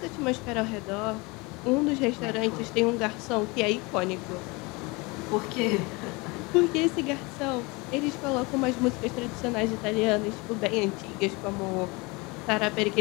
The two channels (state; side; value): quieter; right; 26.2 dB